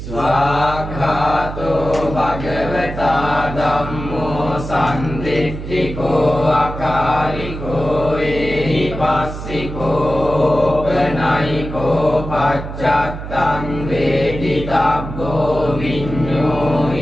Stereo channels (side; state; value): right; noise; hum, 8 dB below the sound